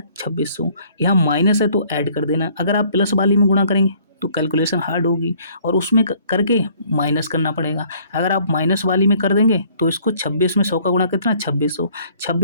2600। यहाँ माइनस है तो ऐड कर देना, अगर आप प्लस वाली में गुणा करेंगे तो कैलकुलेशन हार्ड होगी और उसमें करके माइनस करना पड़ेगा। अगर आप माइनस वाली में कर देंगे तो इसको 26 में 100 का गुणा कितना 2600,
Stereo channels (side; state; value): both; inverted; correlation -0.59